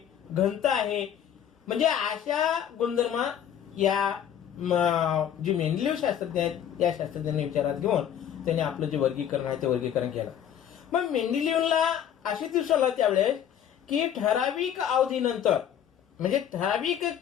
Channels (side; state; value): right; quieter; 9.5 dB